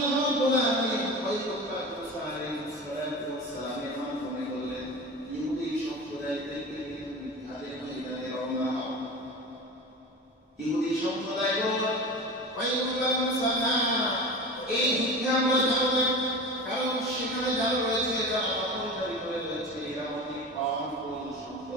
রাব্বুল আলামিন পয়গম্বর মুসা আলাইহিস সালাতু ওয়াস সালামের মাধ্যমে বললেন, ইহুদি সম্প্রদায়কে জিহাদের ময়দানে রওনা হও। ইহুদি সম্প্রদায় বলল, পয়গম্বর মুসা এই যুদ্ধে আমরা যাব না, কারণ সেখানে যারা রয়েছে যারা দখলদারি করে রয়েছে এরা অনেক পাওয়ারফুল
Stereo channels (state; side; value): normal; both; correlation 0.31